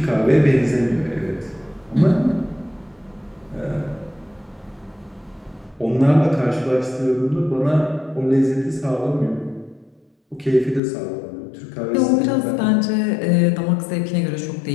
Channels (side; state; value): right; drops out; at 10.8 s